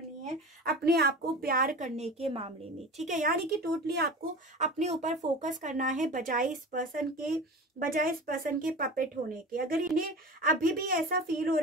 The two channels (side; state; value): both; normal; correlation 0.33